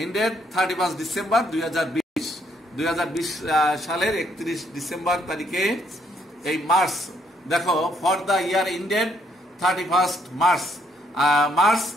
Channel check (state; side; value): normal; both; correlation 0.70